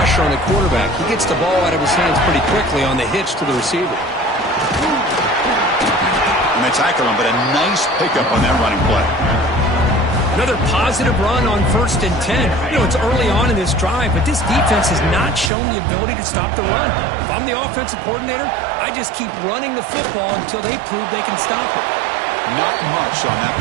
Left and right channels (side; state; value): left; drops out; at 15.5 s